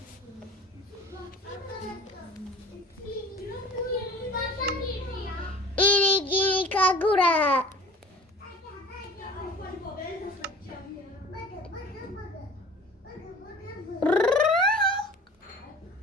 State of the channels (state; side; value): normal; both; correlation 0.43